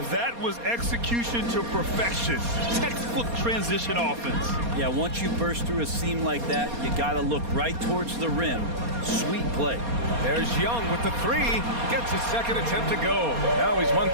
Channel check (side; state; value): left; late; 4.2 ms